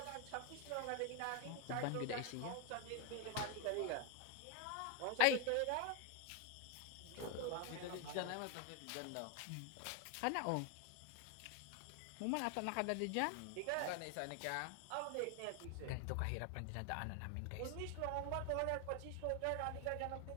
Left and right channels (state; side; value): different; both; correlation 0.01